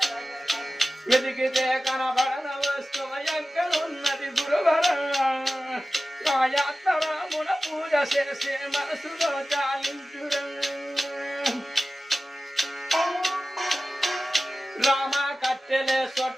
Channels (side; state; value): both; normal; correlation 0.95